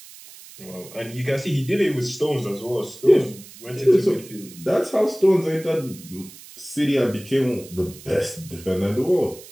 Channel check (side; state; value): right; noise; hiss, 18 dB below the sound